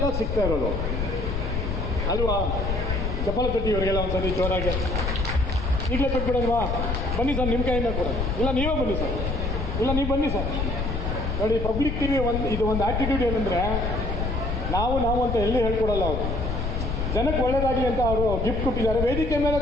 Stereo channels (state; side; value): noise; left; rumble, 1 dB below the sound